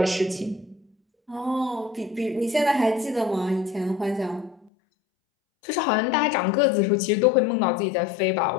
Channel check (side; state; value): right; drops out; at 4.7 s